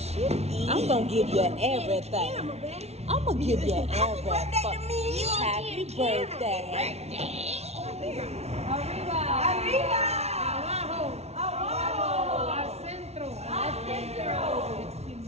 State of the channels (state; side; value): late; left; 0.31 ms